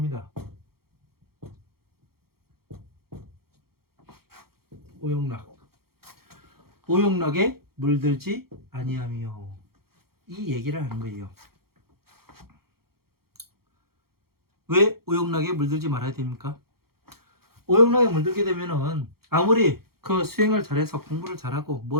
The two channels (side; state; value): left; late; 0.94 ms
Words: 오용락. 오용락에 물들지 아니하며 이 얘기를 하는 거예요. 왜 오용락에 물들지 말아야 됩니까? 오용락에 물들게 되면은 아무리 그 수행을 잘해서 공부를 잘하고